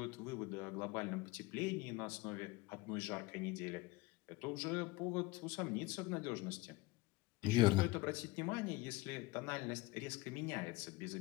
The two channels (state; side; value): quieter; right; 20.7 dB